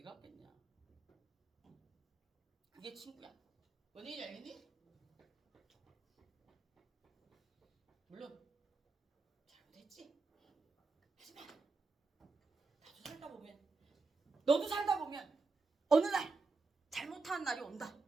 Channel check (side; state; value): left; quieter; 4.0 dB